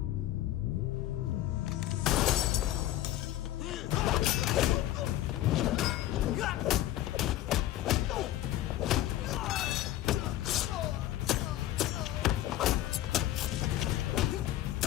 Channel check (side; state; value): right; quieter; 14.0 dB